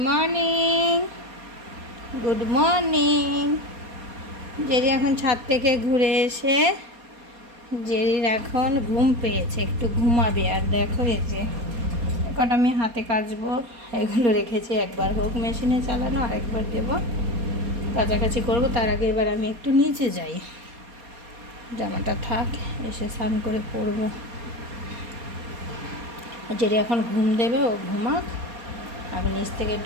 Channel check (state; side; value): late; left; 4.2 ms